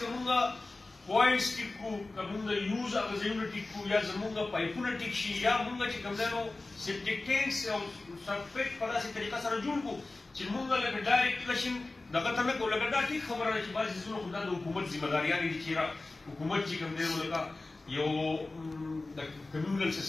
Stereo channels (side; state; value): right; quieter; 3.2 dB